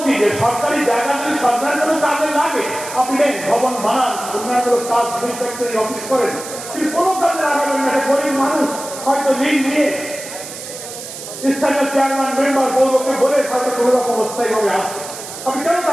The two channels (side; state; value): right; noise; hiss, 11 dB below the sound